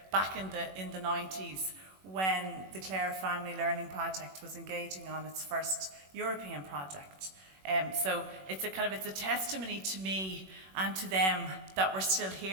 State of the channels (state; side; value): late; left; 21 ms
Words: back in the 90s when the Clare Family Learning Project was engaging on its first European project. So it's a testimony to me and to them that we're still